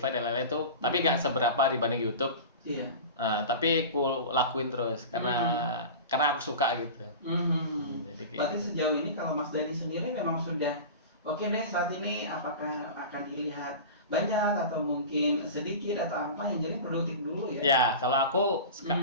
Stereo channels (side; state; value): both; inverted; correlation -0.32